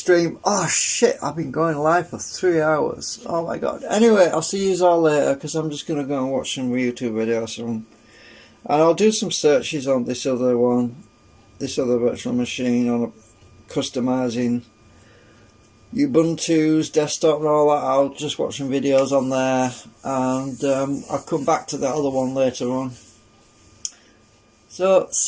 Oh shit, I've been going live for 3 hours. Oh my god. Anyway, I'll see you all later, because I'm just going to go and watch some YouTube videos. And I'll do some searches on this other one, this other virtual machine, on customizing Ubuntu's desktop and all that. I'll just watch some videos on there, and I'll come back to that other one later on. So,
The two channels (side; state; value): both; identical; correlation 1.00